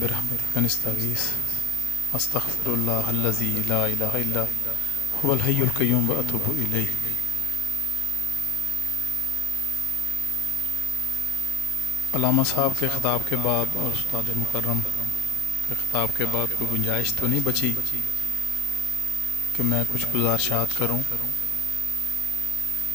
نستغیث استغفر اللہ الذی لا الہ الا هو الحی القیوم واتوب الیہ۔ علامہ صاحب کے خطاب کے بعد اور استاد مکرم کے خطاب کے بعد کوئی گنجائش تو نہیں بچی کہ میں کچھ گزارشات کروں،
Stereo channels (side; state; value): both; normal; correlation 0.53